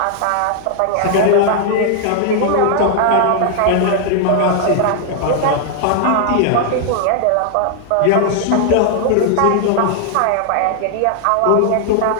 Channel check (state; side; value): different; both; correlation 0.00